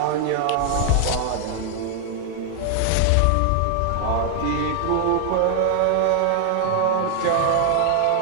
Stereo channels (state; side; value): different; both; correlation 0.00